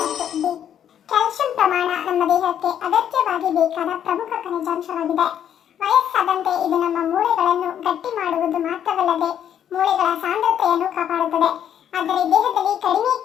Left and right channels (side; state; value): right; quieter; 9.6 dB